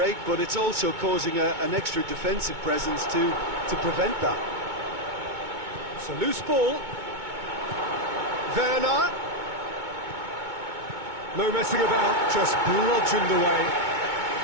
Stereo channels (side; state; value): left; late; 2.2 ms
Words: but it's also causing an extra defensive presence to prevent that. It's a loose ball. Werner. No messing about, just bludgeoned away.